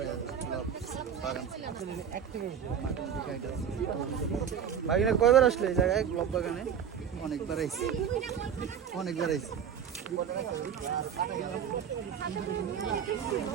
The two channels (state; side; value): quieter; left; 8.1 dB